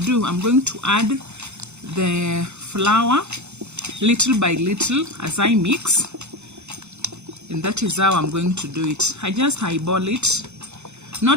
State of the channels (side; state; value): left; late; 0.82 ms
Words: I'm going to add the flour little by little as I mix. And that is how I'm going to do it. I just eyeball it.